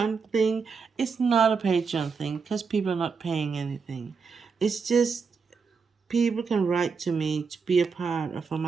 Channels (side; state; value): left; quieter; 5.4 dB